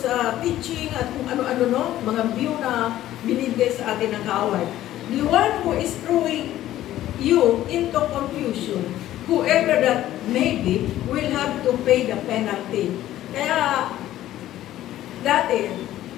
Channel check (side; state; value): right; quieter; 13.6 dB